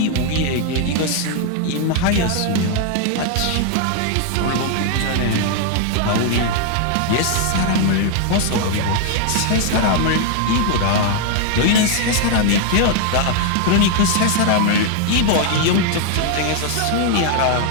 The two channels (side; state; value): both; different; correlation 0.00